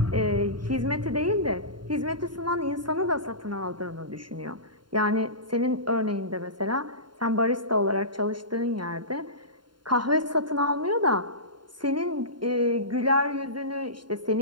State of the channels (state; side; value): late; left; 0.72 ms